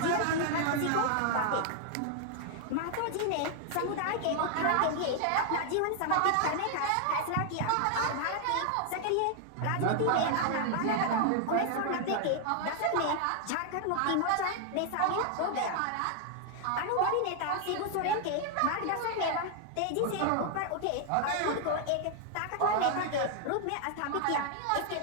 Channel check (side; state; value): both; different; correlation 0.00